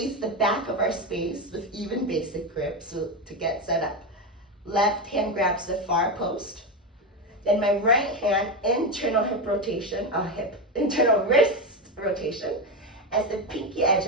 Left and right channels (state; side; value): normal; both; correlation 0.14